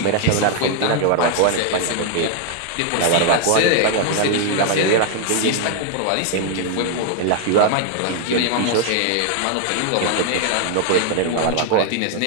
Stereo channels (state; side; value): different; both; correlation 0.00